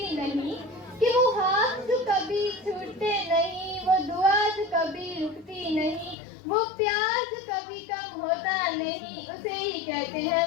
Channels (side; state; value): right; drops out; at 6.2 s